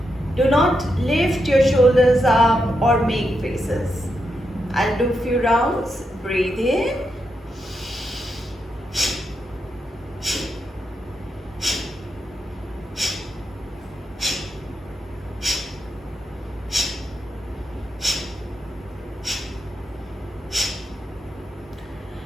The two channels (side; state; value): both; normal; correlation 0.84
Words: Do not lift your shoulders up or make faces. I'll do a few rounds. Breathe in.